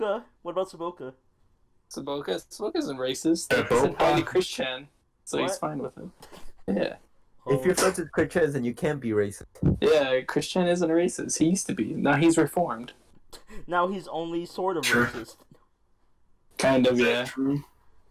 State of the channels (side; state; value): both; identical; correlation 1.00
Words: What about Saboka? Saboka isn't racist. Saboka? He's a highly Christian, so he's What? fine with him. Yeah. If you're friends with Christians, then you can't be racist. Yeah, Christian isn't racist. He used to be. Now he's reformed. Now he's only sort of Sure. racist. Kind of, Is that yeah. true?